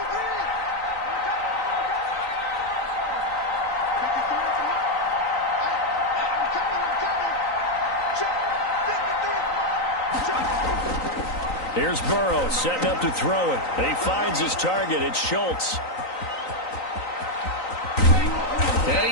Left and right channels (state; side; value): late; right; 3.9 ms